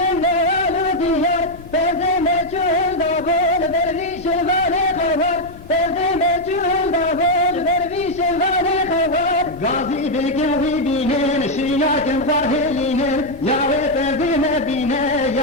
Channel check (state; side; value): noise; left; rumble, 19 dB below the sound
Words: walu diyar Tezine çuhun da bol derviş vani khawar Tezine çuhun da bol derviş vani khawar Gazi bekevi binen şiyakem farhelinen Yahve tezine bine